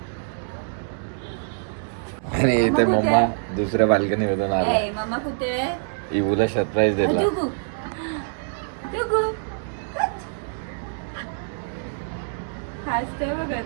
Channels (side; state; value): left; silent; 62 dB below the other